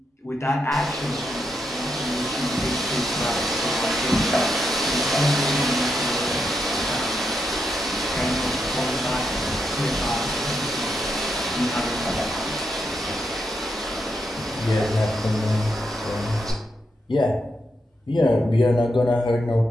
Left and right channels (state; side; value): normal; both; correlation 0.82